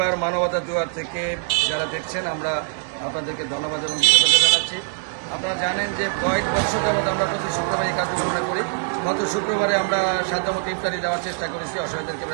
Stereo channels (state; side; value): silent; left; 62 dB below the other